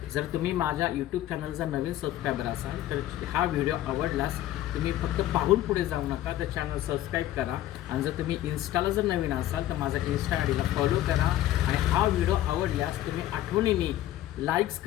जर तुम्ही माझ्या यूट्यूब चॅनलचा नवीन सबस्क्रायबर असाल तर हा व्हिडिओ आवडलास तुम्ही फक्त पाहून पुढे जाऊ नका, तर चॅनल सबस्क्राईब करा. आणि जर तुम्ही इन्स्टाला जर नवीन असाल तर माझा इन्स्टा आय डीला फॉलो करा. आणि हा व्हिडिओ आवडल्यास तुम्ही आठवणीने लाईक्स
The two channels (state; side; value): quieter; right; 13.7 dB